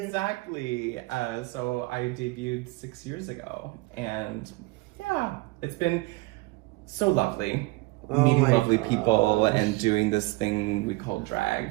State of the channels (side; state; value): left; quieter; 22.6 dB